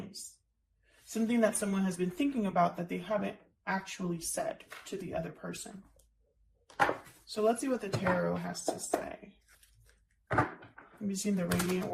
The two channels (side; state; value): both; identical; correlation 1.00